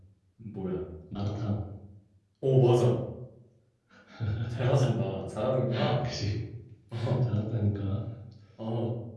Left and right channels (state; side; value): identical; both; correlation 1.00